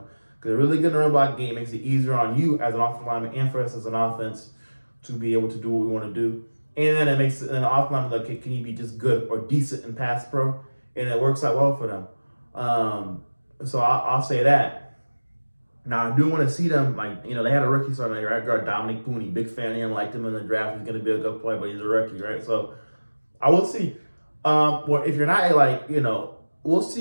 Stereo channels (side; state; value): both; inverted; correlation -1.00